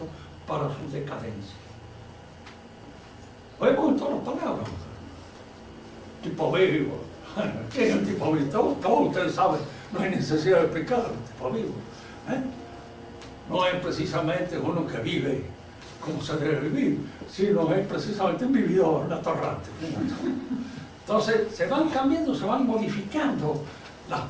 para su decadencia. Oímos todas las palabras. Tipo vivo. ¿Qué es el tipo vivo? Todos ustedes saben, no hay necesidad de explicarlo, el tipo vivo. No es precisamente uno que vive como se debe vivir, sino es precisamente un vividor, un atorrante. Entonces se van cambiando, se van modificando las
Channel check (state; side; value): identical; both; correlation 1.00